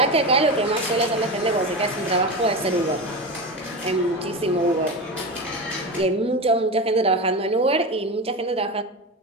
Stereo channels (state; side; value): normal; both; correlation 0.22